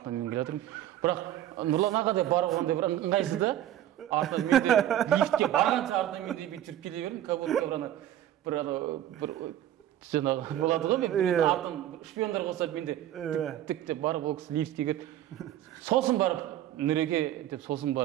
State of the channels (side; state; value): left; quieter; 12.3 dB